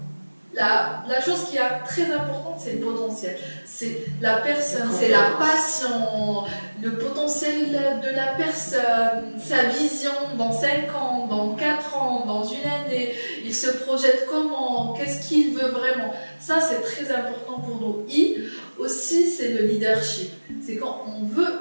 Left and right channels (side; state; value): both; inverted; correlation -1.00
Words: La chose qui est très importante, c'est le potentiel. C'est la personne, c'est la passion, le potentiel de la personne, sa vision dans 5 ans, dans 4 ans, dans une année. Il se projette comment, qu'est-ce qu'il veut vraiment. Ça, c'est très important pour nous. Et aussi, c'est le leadership. C'est quand on veut